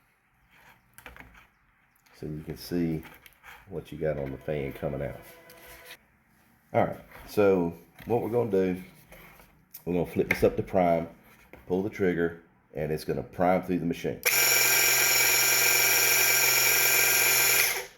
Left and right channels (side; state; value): both; identical; correlation 1.00